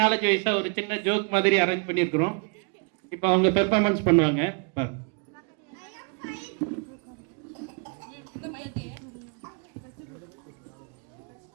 வைஸாக ஒரு சின்ன ஜோக் மாதிரி அரேஞ்ச் பண்ணியிருக்கிறோம். இப்போ அவங்க பெர்ஃபார்மன்ஸ் பண்ணுவாங்க.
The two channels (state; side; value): quieter; left; 37.2 dB